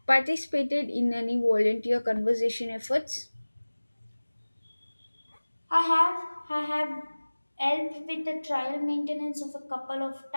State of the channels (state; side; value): inverted; both; correlation -1.00